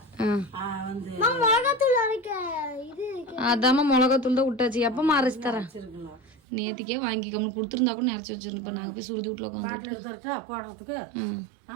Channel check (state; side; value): drops out; left; at 6.4 s